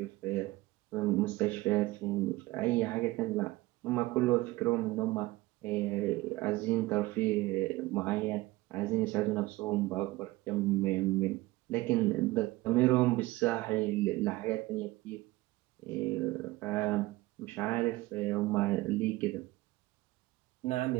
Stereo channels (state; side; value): quieter; left; 19.5 dB